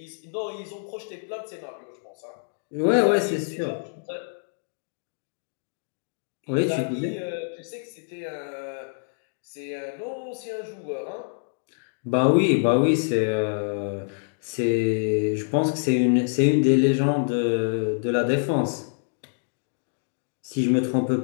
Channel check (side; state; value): right; silent; digital silence